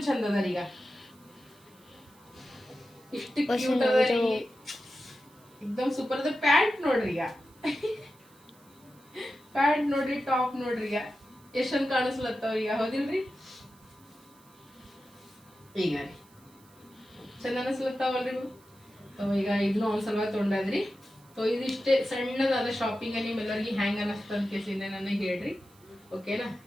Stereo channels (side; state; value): right; noise; hiss, 28 dB below the sound